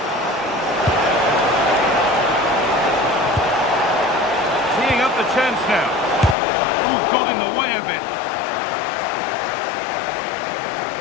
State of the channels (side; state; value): right; drops out; at 6.4 s